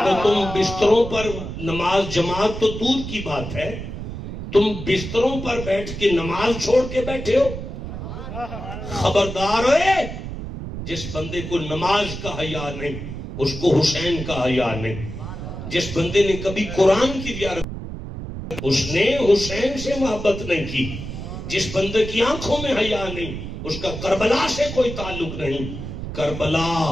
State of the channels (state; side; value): noise; right; rumble, 8 dB below the sound